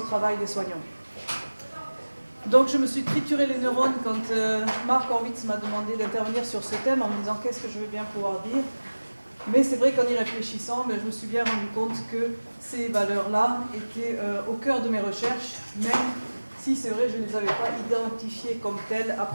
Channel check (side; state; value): both; inverted; correlation -1.00